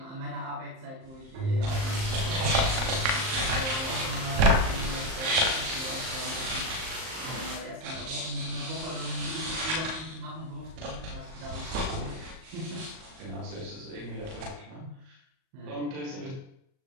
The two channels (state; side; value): late; left; 38 ms